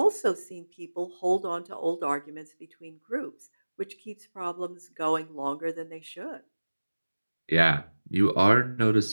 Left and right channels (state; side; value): inverted; both; correlation -1.00